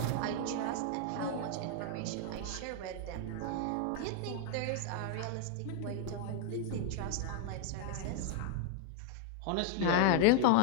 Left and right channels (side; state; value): both; different; correlation 0.00